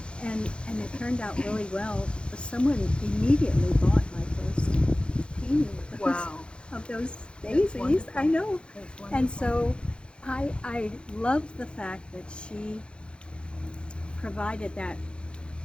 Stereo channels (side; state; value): right; late; 0.055 ms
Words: And it turned out really well. Someone immediately bought my first painting Wow. of those That's daisies. wonderful. I know. That's wonderful. And so I love the fact that she provided that